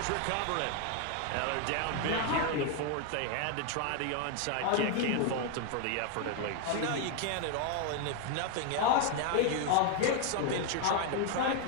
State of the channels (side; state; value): both; different; correlation 0.01